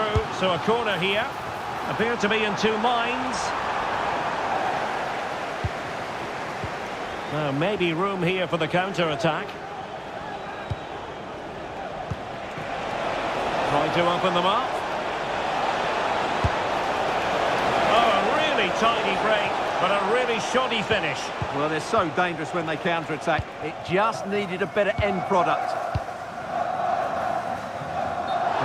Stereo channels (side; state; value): both; identical; correlation 1.00